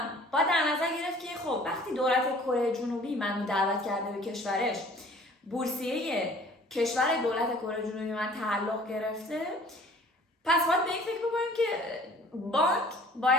باید در نظر گرفت که خب وقتی دولت کره جنوبی منو دعوت کرده به کشورش، بورسیه کشور دولت کره جنوبی من تعلق گرفته، پس باید به این فکر بکنیم که بانک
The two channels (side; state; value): both; normal; correlation 0.51